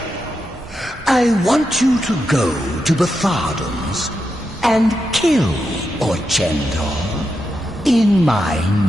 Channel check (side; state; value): both; normal; correlation 0.86